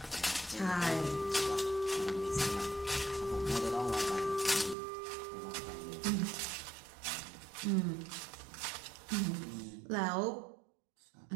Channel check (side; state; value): left; drops out; at 4.8 s